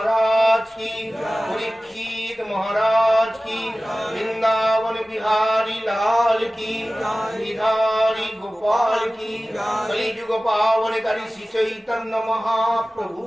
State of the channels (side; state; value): both; normal; correlation 0.97